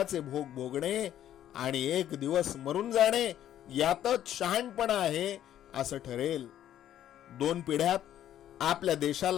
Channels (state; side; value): quieter; right; 11.4 dB